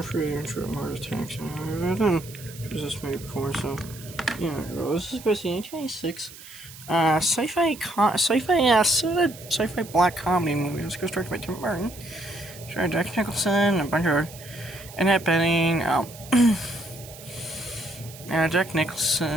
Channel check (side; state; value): right; noise; hiss, 17 dB below the sound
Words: Free Intro of Mars Attacks. I've done this movie before, so this is supposed to be 1996. Sci-fi black comedy movie. This goes directed by Tim Burton. Starring Jack Nicholson, a bunch of Annette Bening, Jack